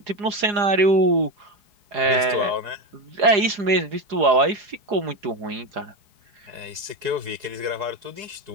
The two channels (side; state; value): left; late; 4.8 ms